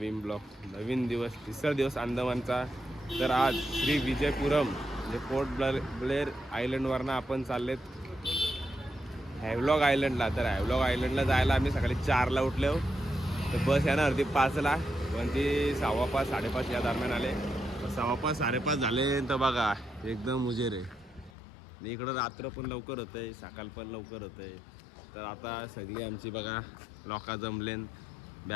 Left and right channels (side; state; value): right; drops out; at 21.3 s